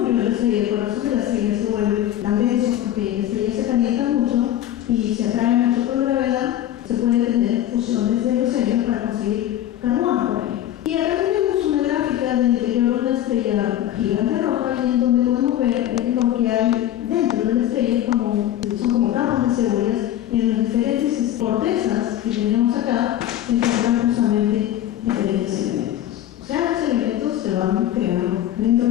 de la estrella, el corazón de la estrella se vuelve tan denso porque la estrella se calienta mucho y se atrae mucho por la gravedad, se pueden tener fusiones de los helios para conseguir carbono, por ejemplo. Y acá tenemos una gráfica del interior de una estrella gigante roja y en donde podemos ver lo que hay dentro de la estrella, son como capas de cebollas, y en las diferentes cortezas que tenemos acá se encuentran justamente diferentes elementos. O sea, los elementos se van creando dentro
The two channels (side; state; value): right; quieter; 12.3 dB